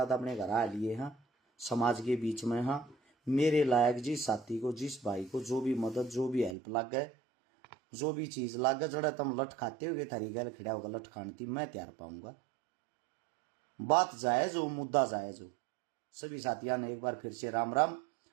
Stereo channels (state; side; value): drops out; left; at 6.6 s